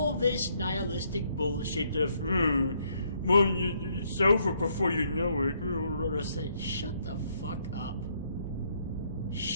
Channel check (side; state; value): both; inverted; correlation -0.71